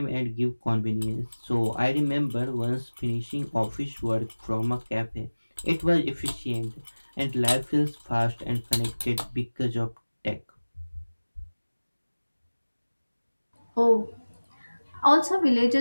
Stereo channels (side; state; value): both; inverted; correlation -1.00